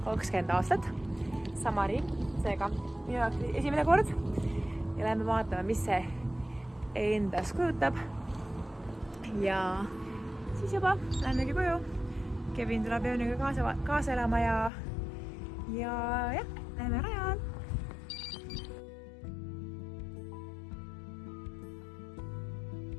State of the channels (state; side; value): drops out; right; at 14.7 s